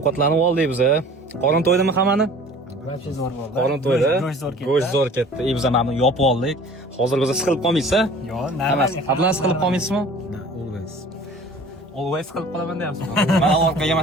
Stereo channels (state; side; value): normal; both; correlation 0.46